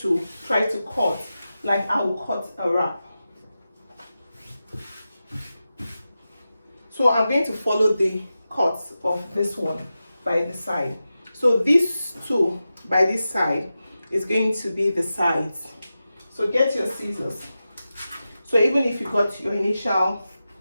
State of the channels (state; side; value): inverted; both; correlation -0.92